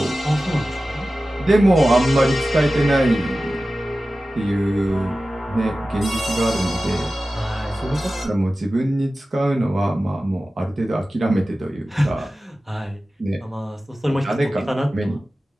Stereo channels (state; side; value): normal; both; correlation 0.95